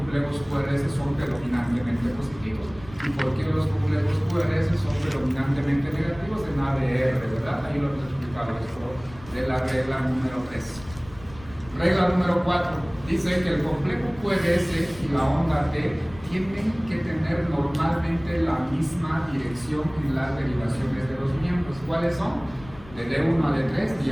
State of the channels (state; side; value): noise; left; rumble, 19 dB below the sound